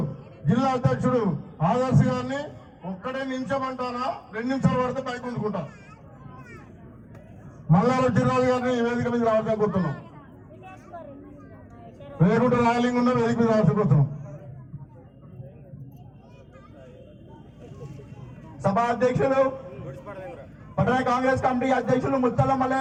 జిల్లా అధ్యక్షుడు ఆదర్శ్ గారిని ఒక్కడే నిమిషమంటానా 2 నిమిషాలు పడితే పైకి ఉంచుకుంటా. మల్లారెడ్డి జిల్లాల గారిని వేదిక మీద రావాల్సిన కోరుతున్నాం. వేగుంట రాయలింగ్ ఉన్న వేదిక మీద రావాల్సిన కోరుతున్నాం. సభా అధ్యక్షులు పట్టణ కాంగ్రెస్ కమిటీ అధ్యక్షులు ముత్తల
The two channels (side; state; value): both; identical; correlation 1.00